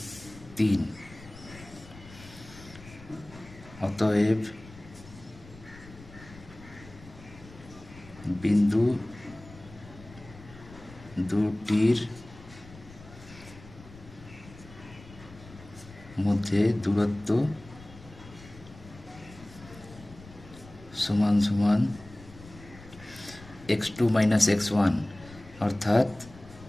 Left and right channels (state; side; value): noise; left; rumble, 19 dB below the sound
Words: 3। অতএব বিন্দু দুটির মধ্যে দূরত্ব সমান সমান x2 মাইনাস x1 অর্থাৎ